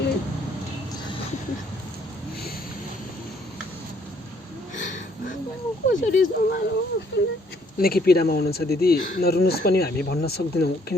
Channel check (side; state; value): both; normal; correlation 0.65